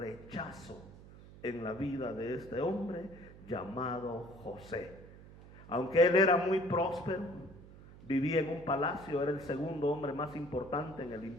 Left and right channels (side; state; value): right; noise; hum, 18 dB below the sound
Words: en la vida de este hombre llamado José. Aunque él era muy próspero, vivía en un palacio, era el segundo hombre más importante en el